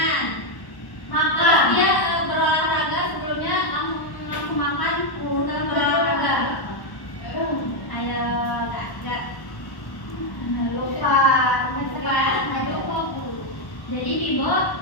Makan. Dia berolahraga sebelumnya langsung makan setelah berolahraga. Ayo kak. Lupa. Jadi Bibo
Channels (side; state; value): right; late; 1.1 ms